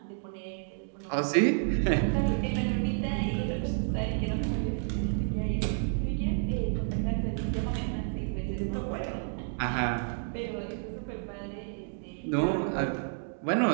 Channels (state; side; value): silent; left; 58 dB below the other